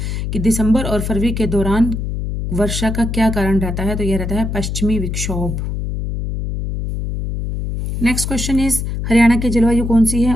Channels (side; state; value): left; noise; hum, 3 dB below the sound